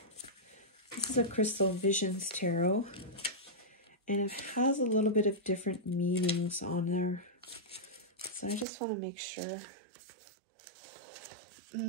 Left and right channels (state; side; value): drops out; left; at 8.7 s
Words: This is a Crystal Visions Tarot, and it has a little bit of different meanings on there. So I just want to make sure.